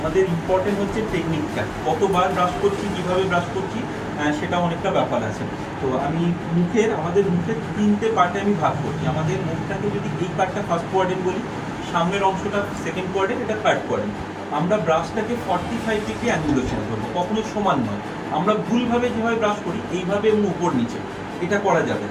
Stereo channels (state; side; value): identical; both; correlation 1.00